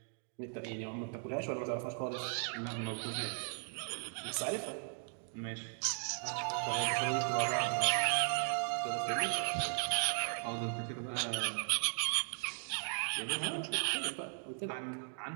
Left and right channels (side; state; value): left; silent; 53 dB below the other